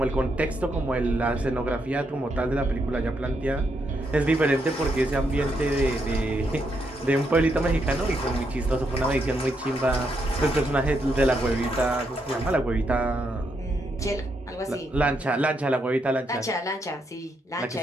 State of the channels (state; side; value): normal; both; correlation 0.79